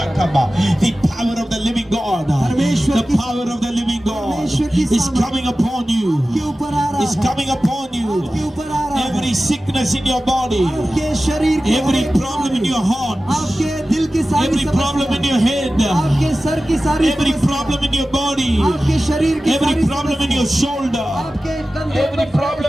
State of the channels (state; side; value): normal; both; correlation 0.95